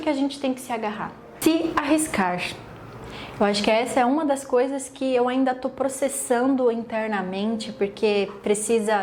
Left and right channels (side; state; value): both; identical; correlation 1.00